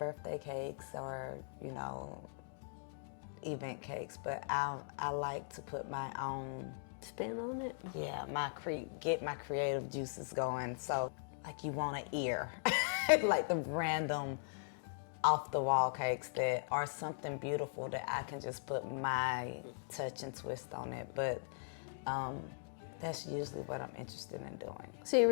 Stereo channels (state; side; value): silent; right; digital silence